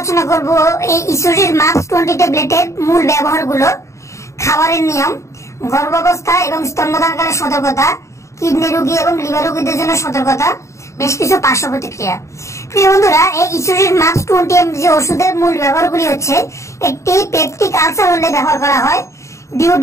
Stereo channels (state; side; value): late; right; 0.14 ms